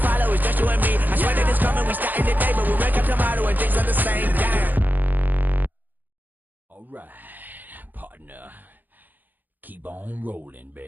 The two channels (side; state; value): left; late; 0.086 ms